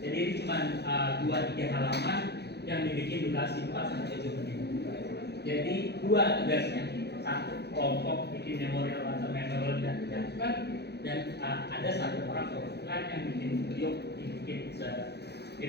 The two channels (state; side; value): late; right; 0.48 ms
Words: Jadi ini cuma 2-3 halaman yang dibikin durasi 4-7 menit. Jadi dua tugasnya, satu kelompok bikin memorial atau memorial dan ada satu orang perwakilan yang bikin video dibikin